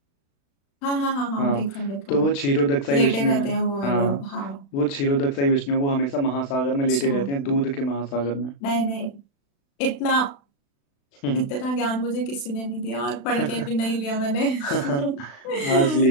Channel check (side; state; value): right; late; 36 ms